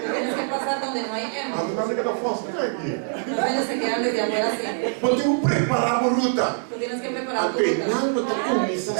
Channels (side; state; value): left; silent; digital silence